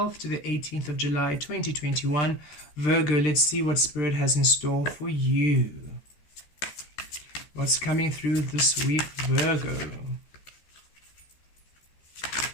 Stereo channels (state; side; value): late; right; 13 ms